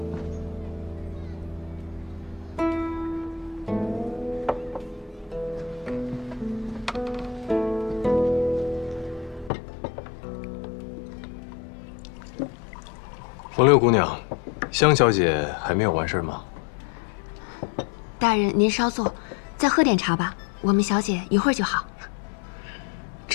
冯六姑娘，香小姐还没有完事吗？大人，您稍坐，再喝点茶吧。我们小姐一会儿就好。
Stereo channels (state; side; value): drops out; right; at 9.5 s